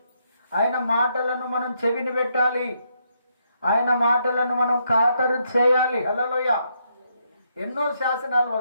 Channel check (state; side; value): inverted; both; correlation -0.76